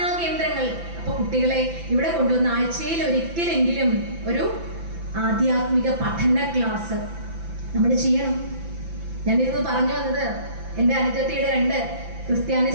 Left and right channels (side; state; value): left; late; 5.9 ms